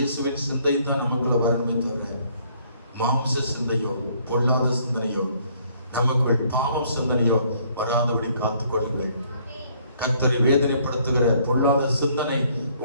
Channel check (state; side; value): inverted; both; correlation -0.64